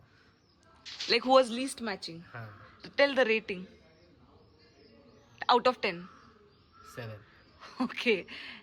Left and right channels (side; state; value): both; identical; correlation 1.00